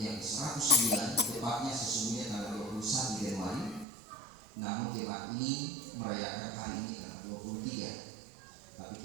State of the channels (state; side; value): drops out; left; at 3.9 s